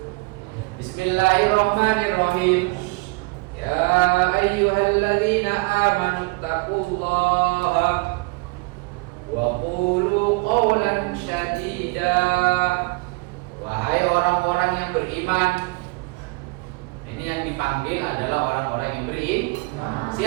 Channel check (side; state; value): left; quieter; 26.0 dB